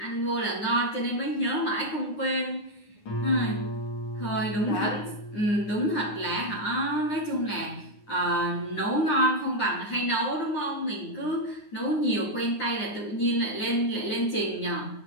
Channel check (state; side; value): late; right; 9.7 ms